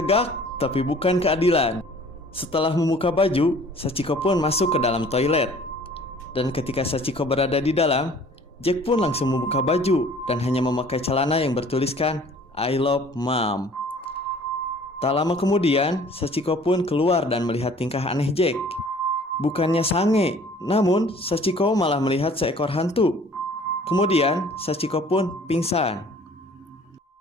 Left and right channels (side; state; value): both; normal; correlation 0.52